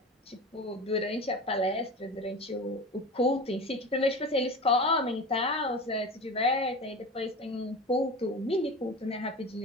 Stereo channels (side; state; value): both; normal; correlation 0.31